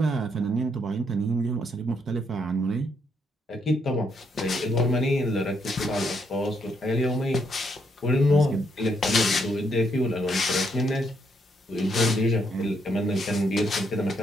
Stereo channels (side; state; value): both; normal; correlation 0.75